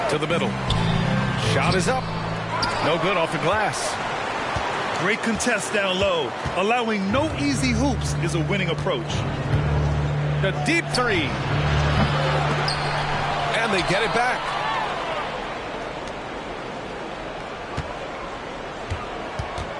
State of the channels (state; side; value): identical; both; correlation 1.00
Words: To the middle. Shot is up. No good off the glass. Great contest down low. Allowing no easy hoops is a winning approach. The deep three. And they get it back.